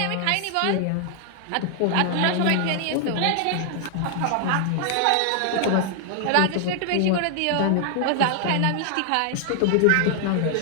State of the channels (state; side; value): different; both; correlation 0.00